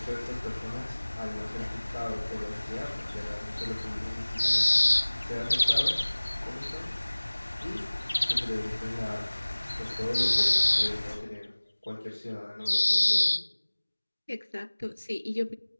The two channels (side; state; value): both; inverted; correlation -1.00